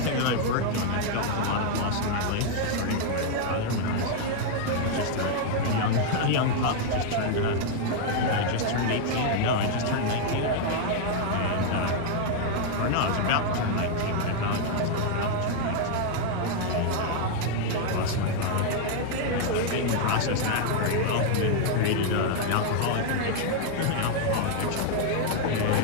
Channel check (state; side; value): different; both; correlation 0.00